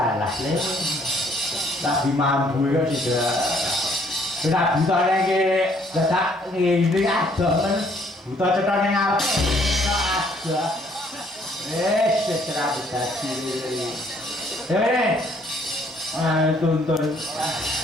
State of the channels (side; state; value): both; normal; correlation 0.64